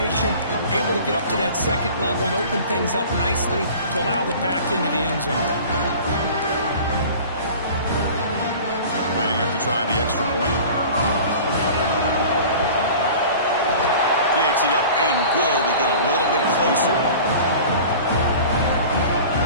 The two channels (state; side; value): inverted; both; correlation -0.41